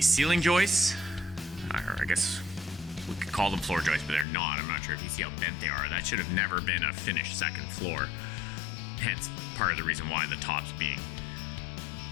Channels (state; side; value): drops out; right; at 4.2 s